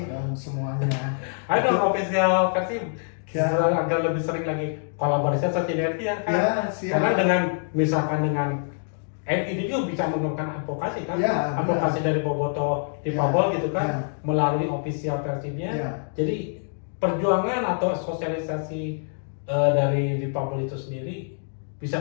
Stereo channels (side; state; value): right; silent; digital silence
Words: dan semuanya. Ayo dong official Persib agar lebih sering lagi kolaborasi atau sinergi ya kan? Karena dengan misalkan dengan ini juga bisa menggunakan advokasi kan, advokasi dari Boboto difabel gitu kan, melalui official Persibnya. Jadi perjuangan atau sosialisasi dari difabel itu sendiri bisa